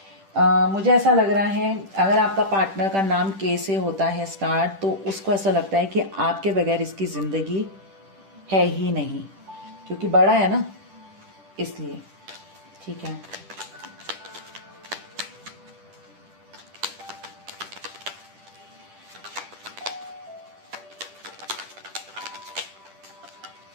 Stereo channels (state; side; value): late; left; 10 ms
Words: मुझे ऐसा लग रहा है अगर आपका पार्टनर का नाम के से होता है स्टार्ट, तो उसको ऐसा लगता है कि आपके बगैर इसकी जिंदगी है ही नहीं, क्योंकि बड़ा है ना इसलिए। ठीक है,